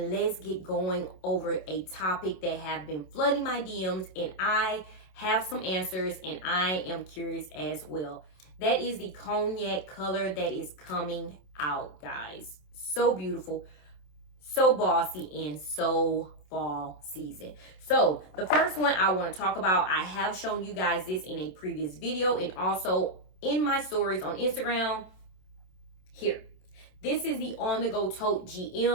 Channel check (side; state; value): right; late; 27 ms